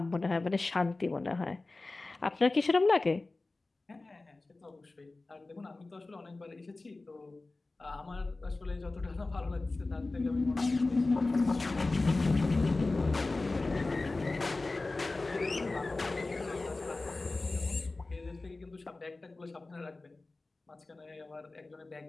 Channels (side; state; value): right; quieter; 3.3 dB